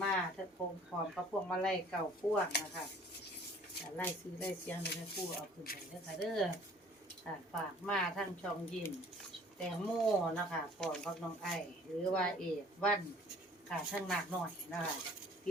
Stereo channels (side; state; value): both; normal; correlation 0.53